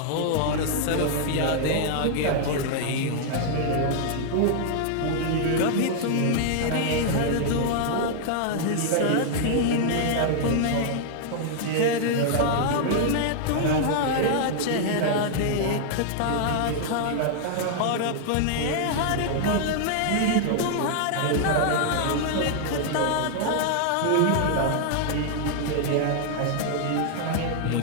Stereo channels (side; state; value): both; different; correlation -0.01